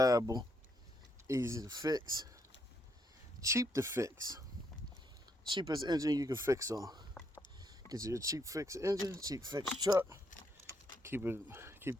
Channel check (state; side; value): normal; both; correlation 0.74